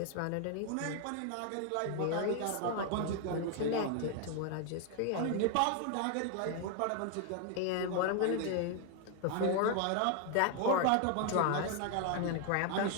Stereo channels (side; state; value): both; different; correlation 0.00